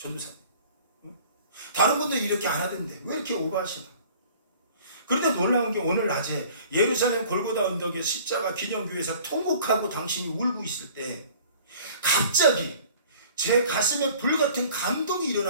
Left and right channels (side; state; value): both; inverted; correlation -0.49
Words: 응? 다른 분들 이렇게 안 하던데 왜 이렇게 오버하시나. 그런데 놀라운 게 오늘 낮에 예루살렘 골고다 언덕에 십자가 기념교회에서 통곡하고 당신이 울고 있을 때 갑자기 제 가슴에 불같은 감동이